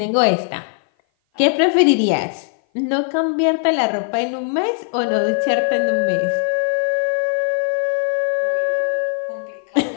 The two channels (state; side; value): silent; right; 57 dB below the other